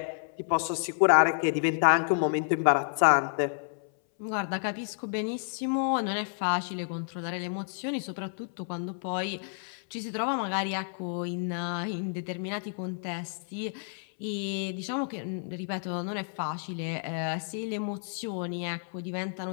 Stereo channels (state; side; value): silent; right; 58 dB below the other